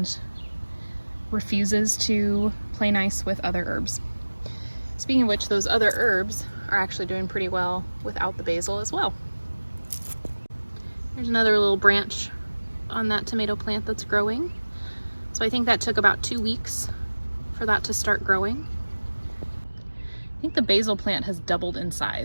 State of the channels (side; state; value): both; inverted; correlation -1.00